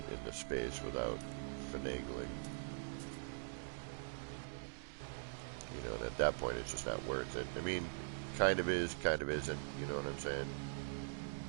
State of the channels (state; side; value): silent; left; digital silence